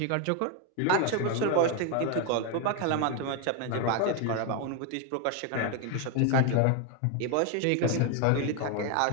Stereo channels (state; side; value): different; both; correlation 0.01